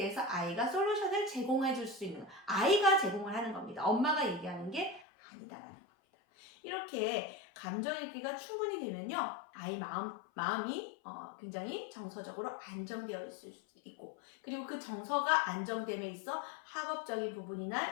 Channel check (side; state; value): right; drops out; at 5.1 s